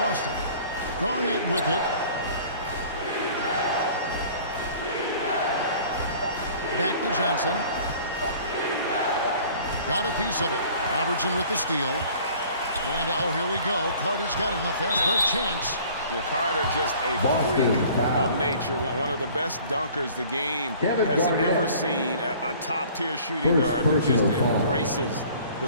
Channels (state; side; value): inverted; both; correlation -0.50